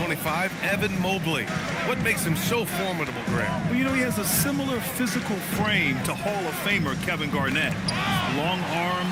Evan Mobley. What makes him so formidable, Graham? Well, you know, he has a similar physical frame to Hall of Famer Kevin Garnett.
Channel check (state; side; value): identical; both; correlation 1.00